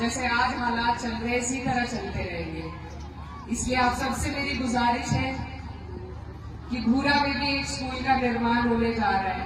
आज हालात चल रहे इसी तरह चलते रहेंगे। इसलिए आप सबसे मेरी गुजारिश है कि भूरा में भी एक स्कूल का निर्माण होने जा रहा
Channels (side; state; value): both; identical; correlation 1.00